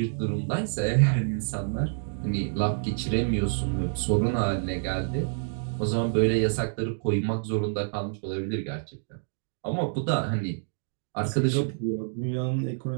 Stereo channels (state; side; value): silent; left; digital silence